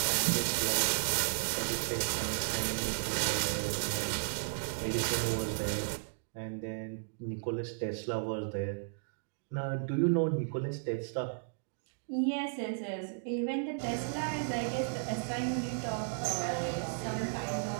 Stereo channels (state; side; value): silent; left; digital silence